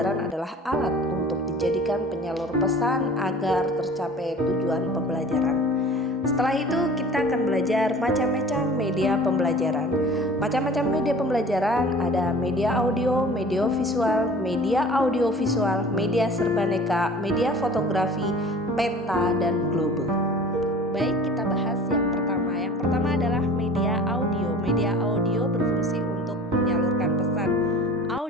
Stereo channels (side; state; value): both; normal; correlation 0.44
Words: adalah alat untuk dijadikan penyalur pesan agar tercapai tujuan pembelajaran. Setelah itu kita akan belajar macam-macam media pembelajaran. Macam-macam media pembelajaran ada media audio, media visual, media audiovisual, media serbaneka, media fotografi, peta, dan globe. Baik, kita bahas yang pertama. Yang pertama adalah media audio. Media audio berfungsi untuk menyalurkan pesan